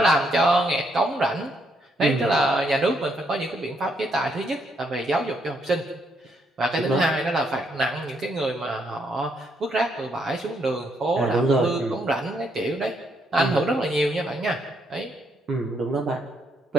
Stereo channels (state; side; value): normal; both; correlation 0.74